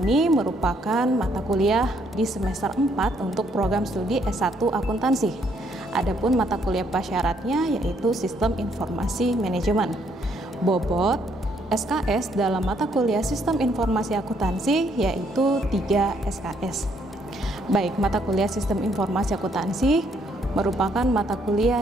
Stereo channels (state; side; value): normal; both; correlation 0.70